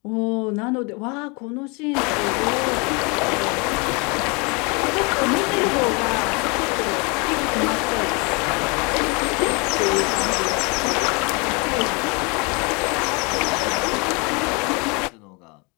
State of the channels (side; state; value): right; quieter; 30.6 dB